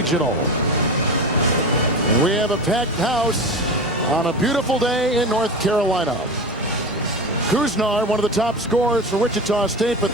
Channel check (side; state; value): both; normal; correlation 0.26